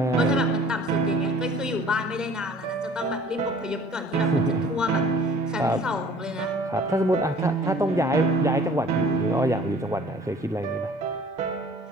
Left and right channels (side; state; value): both; normal; correlation 0.51